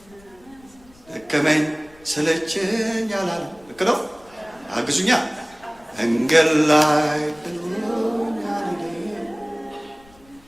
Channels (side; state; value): left; noise; rumble, 27 dB below the sound